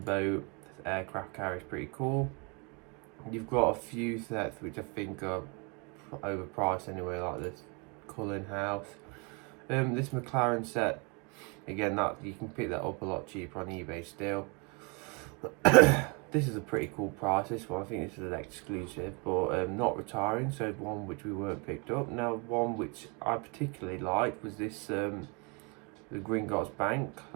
This aircraft carrier is pretty cool. You've got a few sets which I think are overpriced anyway, like this Cullen House. This McLaren set, again, that you can pick that up a lot cheaper on eBay still. This is a pretty cool price. This one, I think this is an exclusive, but not retiring, so one which we weren't picked up. Now, one which I particularly liked was this the Gringotts Bank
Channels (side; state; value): left; quieter; 32.4 dB